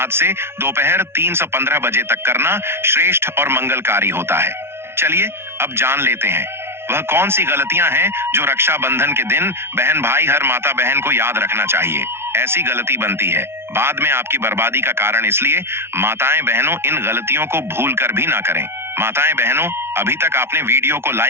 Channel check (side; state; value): left; late; 0.12 ms